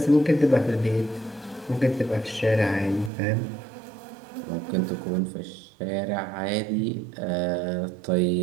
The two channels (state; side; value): drops out; left; at 3.1 s